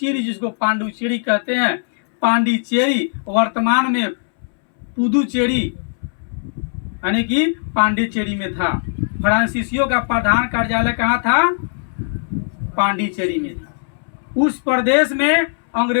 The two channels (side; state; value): right; silent; 66 dB below the other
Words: जिसको पांडुचेरी कहते हैं, पांडिचेरी वर्तमान में पुदुचेरी यानी कि पांडिचेरी में था। फ्रांसीसियों का प्रधान कार्यालय कहाँ था? पांडिचेरी में था। उस प्रदेश में